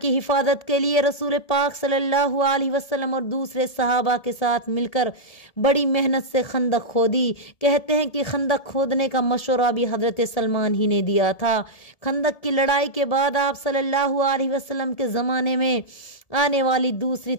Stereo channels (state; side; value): late; right; 1.7 ms